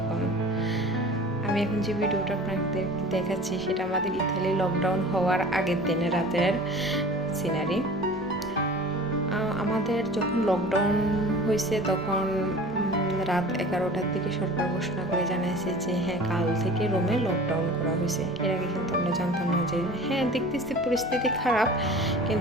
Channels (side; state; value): both; normal; correlation 0.41